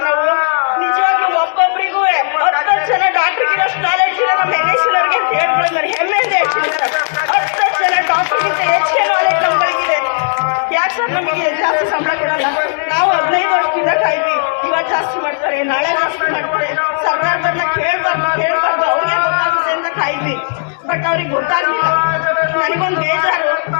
ನಾವು. ನಿಜವಾಗ್ಲೂ ಒಬ್ಬೊಬ್ಬರಿಗೂ 10 ಜನ ಡಾಕ್ಟರ್ಗಿರೋಷ್ಟು ನಾಲೆಡ್ಜ್ ಇಲ್ಲ ನಮ್ಮ NSCನವ್ರಿಗೆ ಅಂತ ಹೇಳ್ಬೋದು. ನನಗೆ ಹೆಮ್ಮೆಯಿಂದ ಹೇಳ್ತೀನಿ ಸರ್, 10 ಜನ ಡಾಕ್ಟರ್ಗಿಂತ ಹೆಚ್ಚಿನ ನಾಲೆಡ್ಜ್ ನಮ್ಗಳಿಗಿದೆ. ಯಾಕೆ ಸರ್ ನಮಗೆ ಜಾಸ್ತಿ ಸಂಬಳ ಕೊಡೋದು? ನಾವು 15 ವರ್ಷದಿಂದ ಕಾಯ್ವಿ, ಇವತ್ತು ಜಾಸ್ತಿ ಮಾಡ್ತಾರೆ, ನಾಳೆ ಜಾಸ್ತಿ ಮಾಡ್ತಾರೆ. ಸರ್ಕಾರದನ್ನ ಕೇಳ್ಬಾರ್ದು ಅವ್ರಿಗೆ ಗೊತ್ತಾಗುತ್ತೆ ಅಂತ ಕಾಯ್ವಿ. ಬಟ್ ಅವ್ರಿಗೆ ಗೊತ್ತಾಗ್ಲಿಲ್ಲ. ನನಗೊಂದು ಬೇಜಾರು,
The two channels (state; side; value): silent; right; digital silence